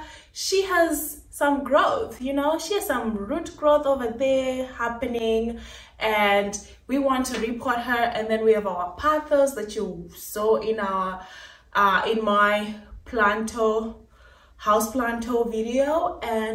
she has some growth, you know, she has some root growth over there happening, and we want to repot her. And then we have our Pothos that you saw in our in my houseplant video,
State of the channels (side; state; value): both; identical; correlation 1.00